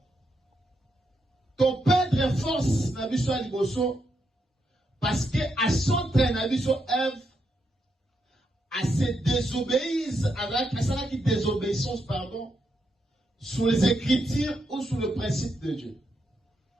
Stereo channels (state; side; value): normal; both; correlation 0.82